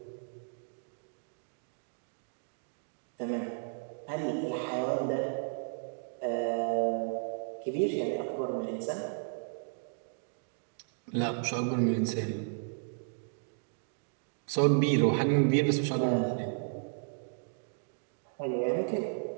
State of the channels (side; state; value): left; silent; digital silence